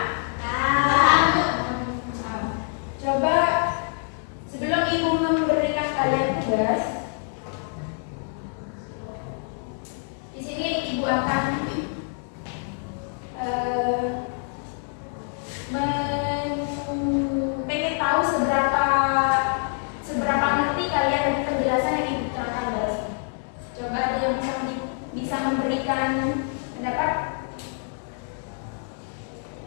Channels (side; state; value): right; silent; 57 dB below the other